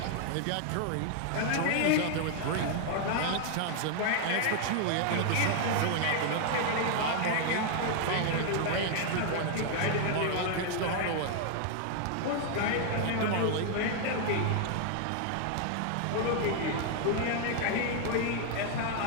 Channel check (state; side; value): different; both; correlation 0.00